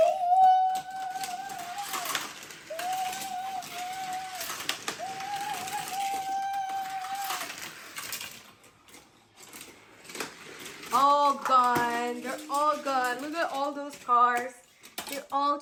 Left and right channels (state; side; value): identical; both; correlation 1.00